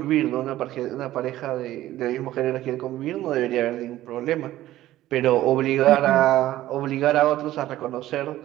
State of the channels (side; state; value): left; quieter; 14.7 dB